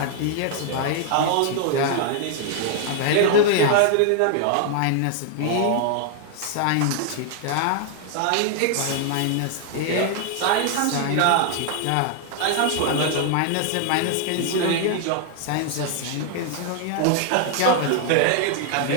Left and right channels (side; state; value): both; different; correlation 0.00